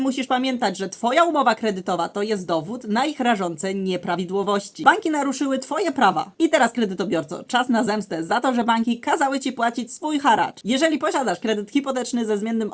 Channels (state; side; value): identical; both; correlation 1.00